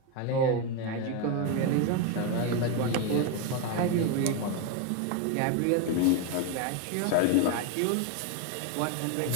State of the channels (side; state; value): both; different; correlation 0.02